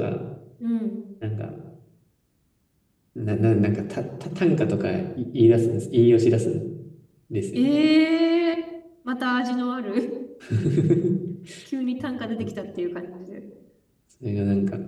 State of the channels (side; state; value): both; identical; correlation 1.00